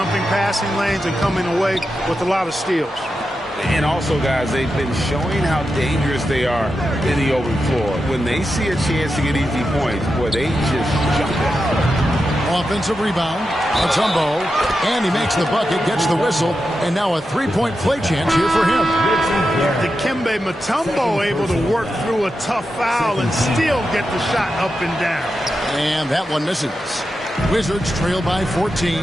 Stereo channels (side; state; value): both; normal; correlation 0.89